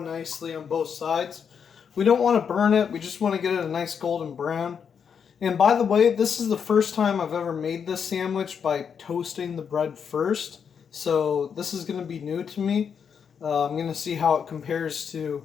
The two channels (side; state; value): right; quieter; 7.0 dB